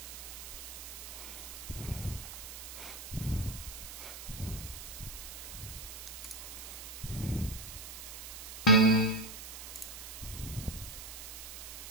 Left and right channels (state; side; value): noise; right; hiss, 10 dB below the sound